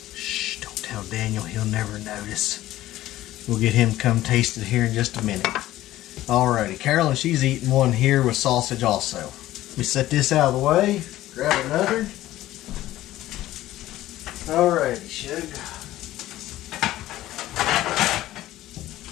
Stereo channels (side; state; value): right; quieter; 15.1 dB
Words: Shh, don't tell Daniel, he'll never notice. We'll get him to come taste it here in just a minute. Alrighty, Carolyn, she's eating one here with sausage also. Let me set this out of the way. Grab another. Alrighty, Shug.